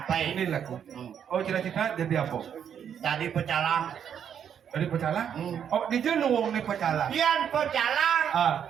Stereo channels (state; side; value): quieter; left; 8.5 dB